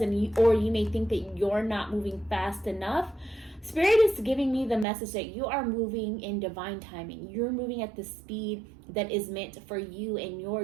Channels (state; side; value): drops out; left; at 4.9 s